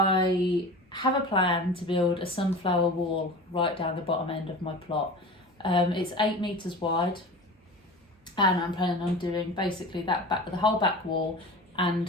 have a plan to build a sunflower wall right down the bottom end of my plot. It's 8 meters wide, and I'm planning on doing basically that back, the whole back wall,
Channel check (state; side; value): normal; both; correlation 0.35